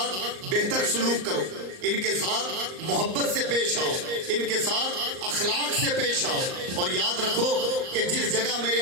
بہتر سلوک کرو، ان کے ساتھ محبت سے پیش آؤ، ان کے ساتھ اخلاق سے پیش آؤ، اور یاد رکھو کہ جس جگہ میرے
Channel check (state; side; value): late; left; 38 ms